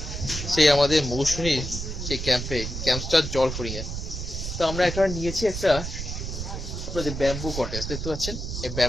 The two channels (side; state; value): right; noise; rumble, 5 dB below the sound